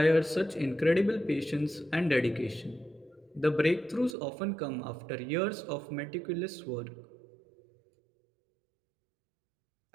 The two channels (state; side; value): drops out; left; at 4.2 s